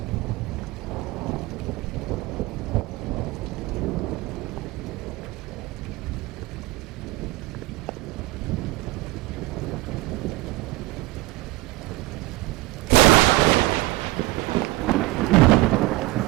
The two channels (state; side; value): quieter; left; 20.0 dB